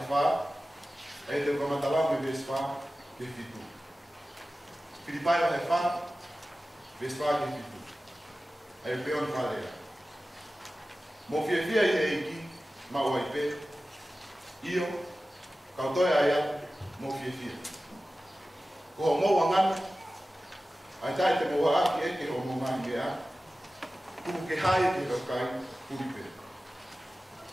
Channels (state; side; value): normal; both; correlation 0.95